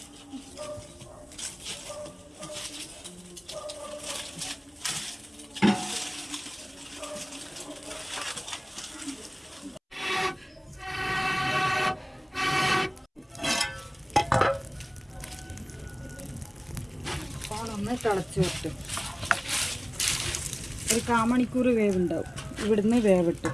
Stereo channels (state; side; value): identical; both; correlation 1.00